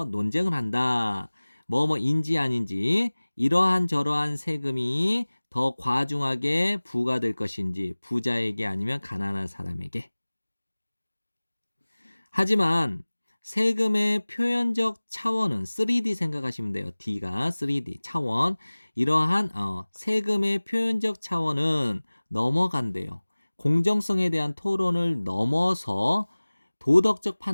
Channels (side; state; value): both; inverted; correlation -1.00